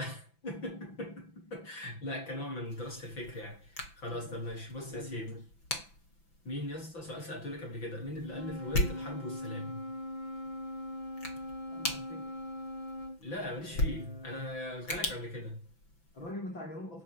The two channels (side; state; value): right; late; 6.0 ms